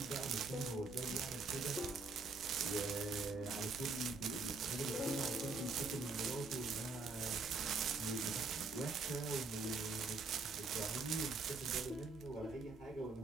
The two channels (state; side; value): quieter; left; 3.8 dB